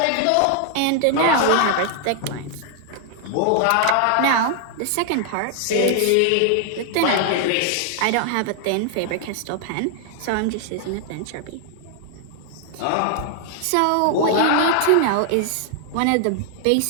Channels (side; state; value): both; different; correlation 0.00